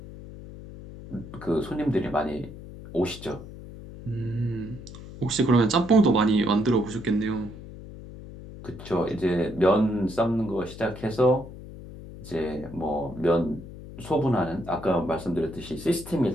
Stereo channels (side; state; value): left; noise; hum, 14 dB below the sound